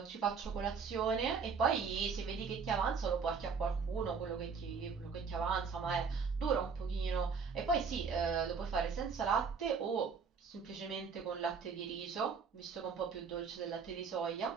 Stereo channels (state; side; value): quieter; left; 5.7 dB